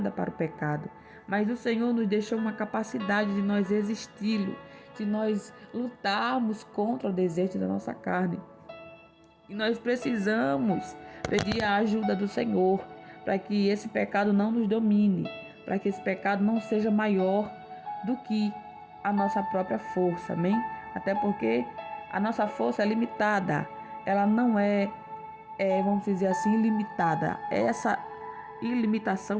para o pecado. Mas o Senhor nos deixou uma capacidade de nós resisti-lo, de nós lutarmos contra o desejo da nossa carne. E nós precisamos pedir a ajuda do Senhor para que esse pecado não nos domine, para que esse pecado não seja maior do que a nossa própria força, amém? Até porque a nossa força é limitada, ela não vamos dizer assim, ilimitada. Essa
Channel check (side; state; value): both; identical; correlation 1.00